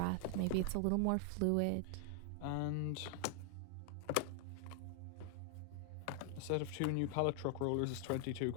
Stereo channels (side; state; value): both; different; correlation 0.00